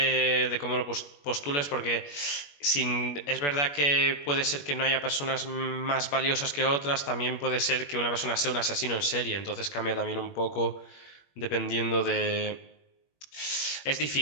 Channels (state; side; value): late; right; 21 ms